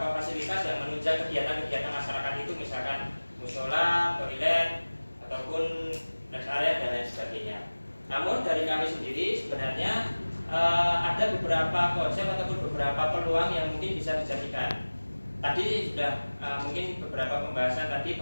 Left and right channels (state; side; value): inverted; both; correlation -1.00